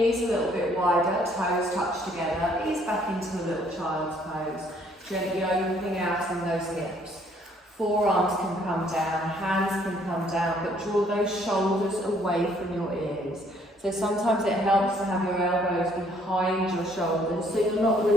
a little bit wider, toes touch together, ease back into a little child's pose. Gently opening out in those hips. Forearms can come down, hands can come down, but draw those shoulders away from your ears. So sometimes it helps to have your elbows behind your shoulders, so you're not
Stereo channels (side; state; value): both; normal; correlation 0.64